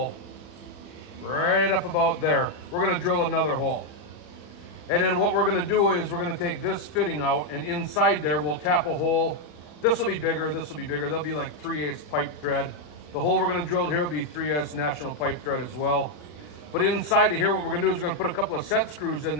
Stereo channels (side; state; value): right; late; 40 ms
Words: right up about there. We're gonna drill another hole. And then what we're gonna do is we're gonna take this fitting out, and inside there we'll tap a hole. This will be bigger, this will be bigger. There'll be like 3/8 pipe thread. The hole we're gonna drill here will be 3/8 national pipe thread as well. But inside of here, what we're gonna do is we're gonna put a couple of set screws in